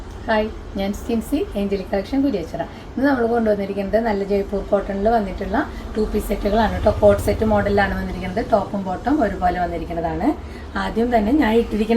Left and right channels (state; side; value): identical; both; correlation 1.00